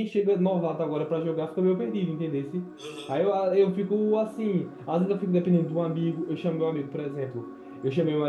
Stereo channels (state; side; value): identical; both; correlation 1.00